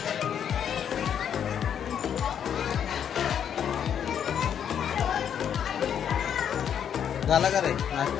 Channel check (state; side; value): quieter; right; 8.7 dB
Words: झाला का रे